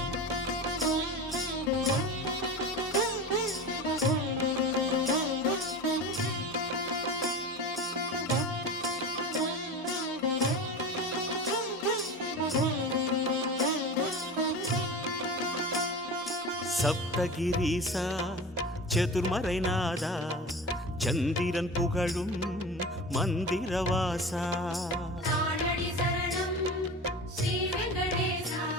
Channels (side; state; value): both; normal; correlation 0.31